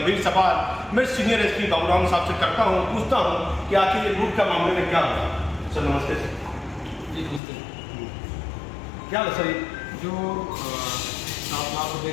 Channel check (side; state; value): right; drops out; at 7.4 s